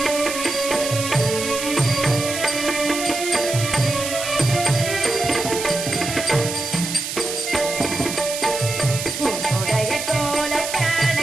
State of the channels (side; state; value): right; noise; hiss, 5 dB below the sound